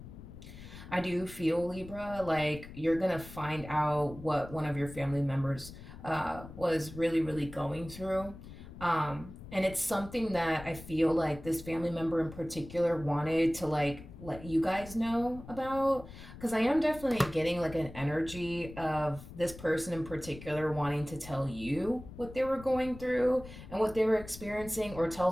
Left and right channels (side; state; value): left; noise; rumble, 15 dB below the sound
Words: Libra, like you're gonna find out what one of your family members was really, really going through. And it's something that I feel like this family member in particular wanted to like let you guys know about. Because I am definitely getting like an energy of this person in particular wanting to tell you what they were going through and what they were experiencing, or tell